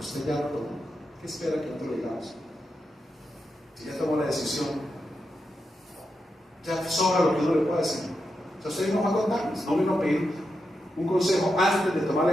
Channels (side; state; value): both; normal; correlation 0.86